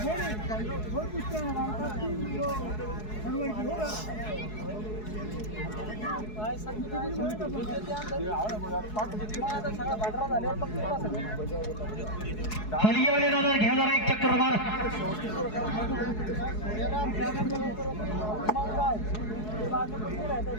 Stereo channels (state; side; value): late; right; 4.7 ms